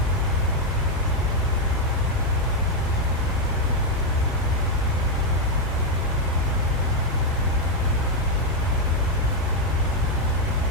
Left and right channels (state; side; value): normal; both; correlation 0.02